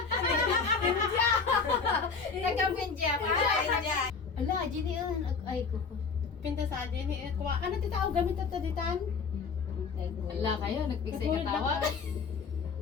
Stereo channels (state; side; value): quieter; right; 5.2 dB